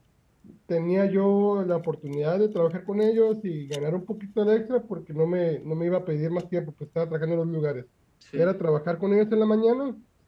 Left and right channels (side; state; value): both; identical; correlation 1.00